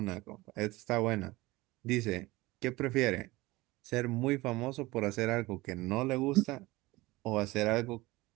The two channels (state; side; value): quieter; left; 20.5 dB